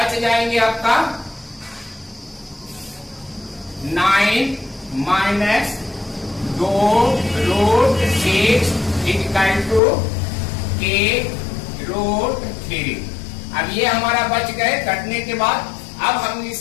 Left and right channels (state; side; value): drops out; right; at 9.8 s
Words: जाएंगे आपका 9 minus 2 root 6 equal to k root 3। अब ये हमारा बच गए कटने के बाद। अब हम